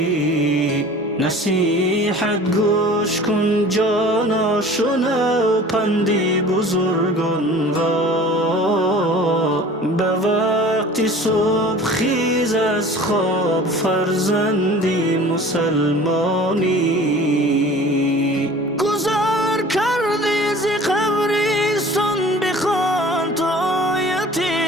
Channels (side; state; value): both; normal; correlation 0.44